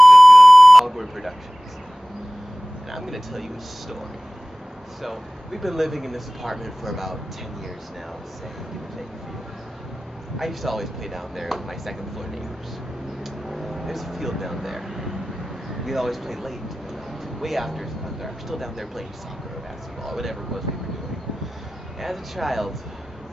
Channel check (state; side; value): normal; both; correlation 0.98